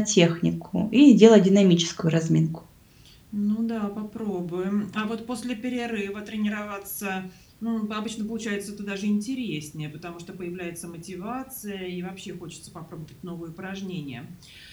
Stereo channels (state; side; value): identical; both; correlation 1.00